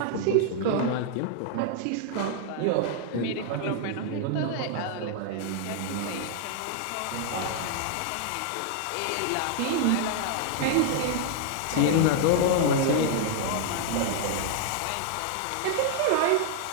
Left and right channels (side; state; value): both; different; correlation -0.01